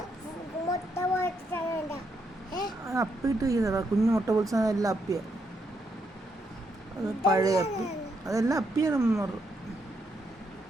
അപ്പിട്ട് ചെയ്യുന്നതാ കുഞ്ഞു മുട്ട പൊളിച്ച എല്ലാം അപ്പിയ. അത് പഴയ അപ്പി അതെല്ലാം അപ്പിയാണ്.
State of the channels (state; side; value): normal; both; correlation 0.78